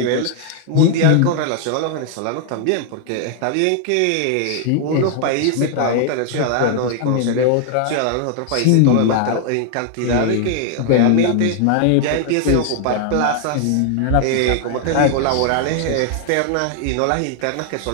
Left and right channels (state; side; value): different; both; correlation 0.00